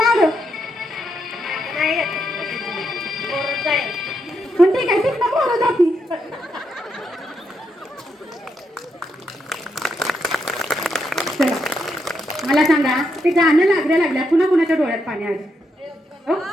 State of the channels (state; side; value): normal; both; correlation 0.80